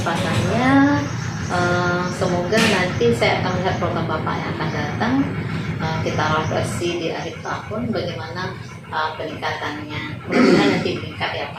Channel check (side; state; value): both; identical; correlation 1.00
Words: Semoga nanti saya akan melihat program Bapak yang akan datang. Kita evaluasi di akhir tahun bagaimana peningkatannya. Mudah-mudahan nanti meningkat ya